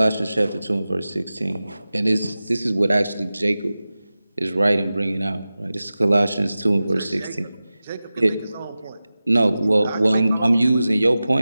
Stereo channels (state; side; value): inverted; both; correlation -0.96